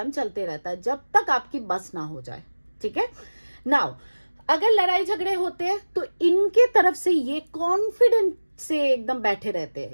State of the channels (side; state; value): both; inverted; correlation -1.00